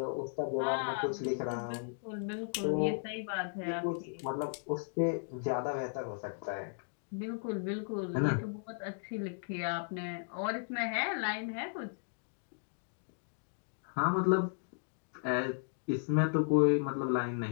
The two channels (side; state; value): right; silent; digital silence